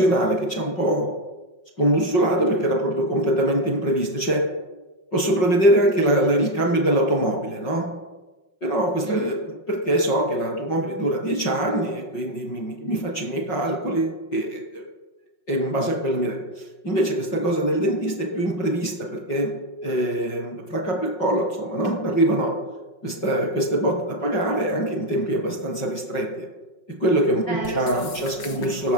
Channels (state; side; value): late; right; 5.5 ms